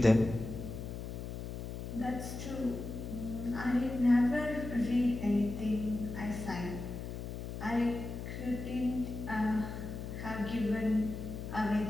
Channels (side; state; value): left; noise; hum, 7 dB below the sound